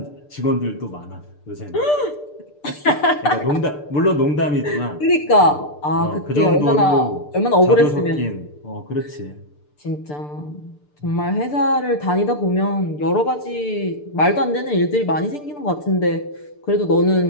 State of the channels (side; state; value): right; late; 6.8 ms